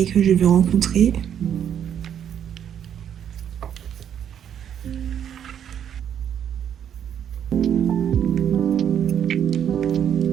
que je vais rencontrer.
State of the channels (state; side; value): quieter; left; 9.2 dB